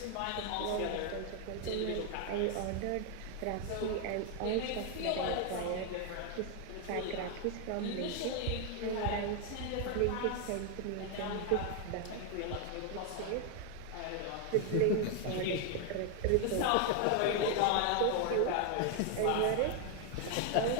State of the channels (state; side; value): different; both; correlation 0.00